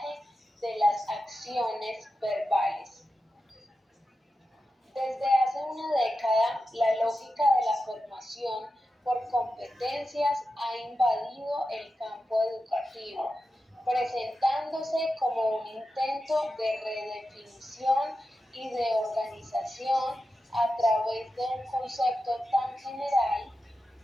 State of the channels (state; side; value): normal; both; correlation 0.91